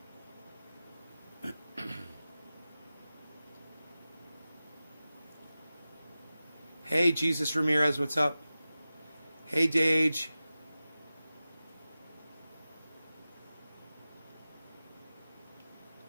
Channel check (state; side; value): inverted; both; correlation -0.95